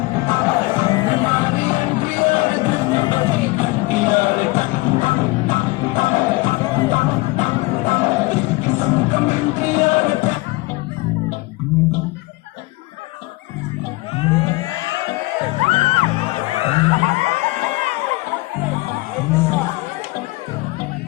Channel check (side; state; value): right; quieter; 22.3 dB